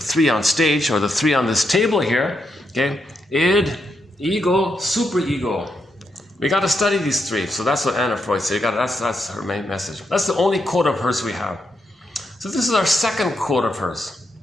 on stage, or the three on this table here, okay? Id, ego, superego. We got to study these three. So that's what Anna Freud said. That's her main message. That's the only quote of hers we have. So this is our second quote of hers.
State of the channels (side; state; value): both; normal; correlation 0.82